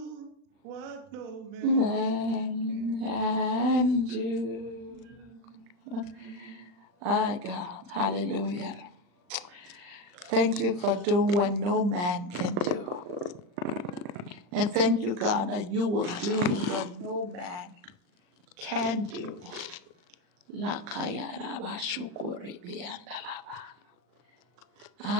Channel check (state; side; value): late; left; 40 ms